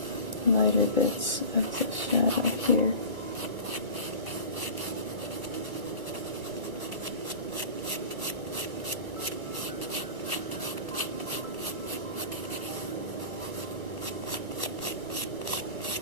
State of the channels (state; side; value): late; left; 1.2 ms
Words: the lighter bits of the shadow here.